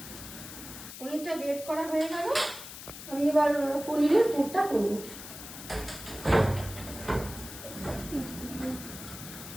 পনিরটা গ্রেট করা হয়ে গেল, আমি এবার পনিরের পুরটা করব।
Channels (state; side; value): noise; left; hiss, 12 dB below the sound